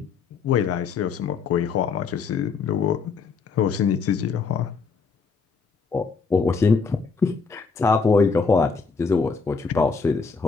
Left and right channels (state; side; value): quieter; right; 5.0 dB